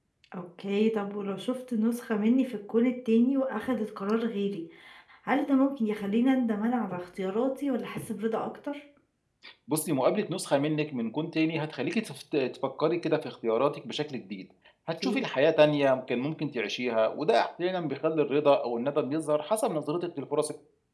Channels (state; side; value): identical; both; correlation 1.00